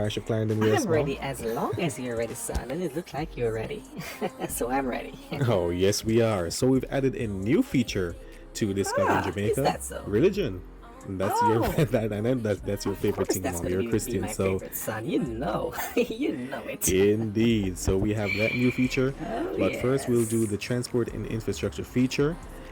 of Clarendon? Yes, I'm Mom? ready as long as you're ready, son. And it looks like you're ready. So I'm ready. Oh, yes, we are. So we've added a new feature to Discovering Is Jamaica. that so? Religion. And that's Oh. your that's your favorite thing, That's Mom. gonna You're a be Christian, my so favorite, son. You know. You know it. indeed. So we have that new feature. Oh, But first we'll yes. do the transport and infrastructure feature,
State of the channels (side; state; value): both; identical; correlation 1.00